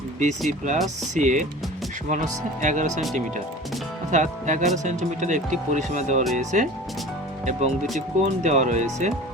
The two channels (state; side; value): normal; both; correlation 0.39